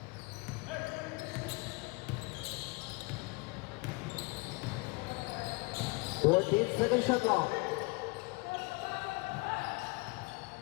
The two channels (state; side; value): quieter; right; 27.4 dB